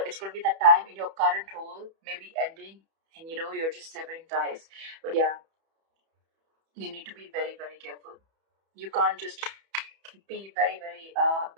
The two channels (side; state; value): left; late; 31 ms